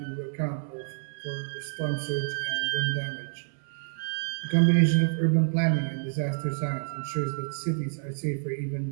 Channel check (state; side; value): silent; left; 59 dB below the other